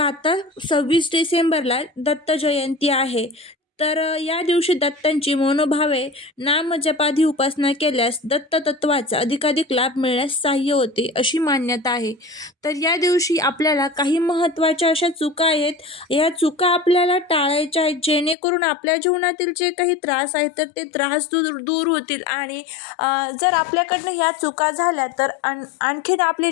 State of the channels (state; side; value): drops out; right; at 18.4 s